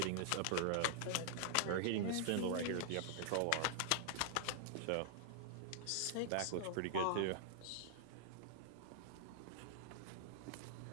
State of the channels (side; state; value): both; different; correlation -0.01